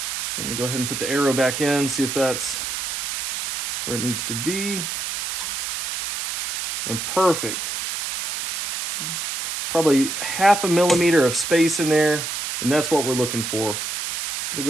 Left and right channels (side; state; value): right; noise; hiss, 4 dB below the sound